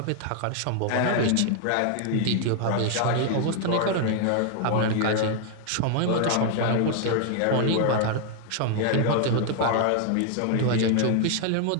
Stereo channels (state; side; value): different; both; correlation 0.00